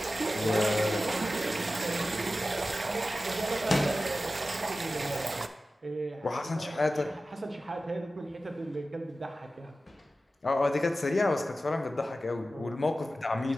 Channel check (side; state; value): both; normal; correlation 0.94